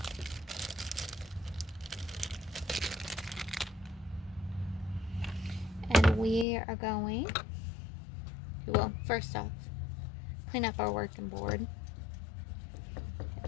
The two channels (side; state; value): right; drops out; at 6.5 s